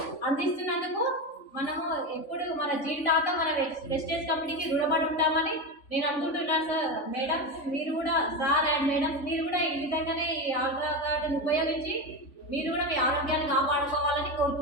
అందిస్తున్నందుకు మనము ఎప్పుడు మన జీవితాంతం మన వెస్టేజ్ కంపెనీకి రుణపడి ఉంటామని నేను అనుకుంటున్నాను. సార్, మేడమ్స్ మీరు కూడా, సార్ అండ్ మేడమ్స్ మీరు కూడా ఈ విధంగానే ఈ ఆల్ట్రాగార్డ్ని ఉపయోగించి మీరు కూడా మీ ఆరోగ్యాన్ని కాపాడుకోవాలని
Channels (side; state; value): right; late; 3.5 ms